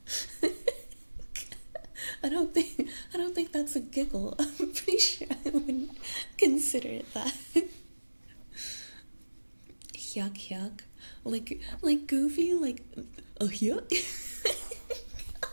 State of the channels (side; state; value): both; inverted; correlation -1.00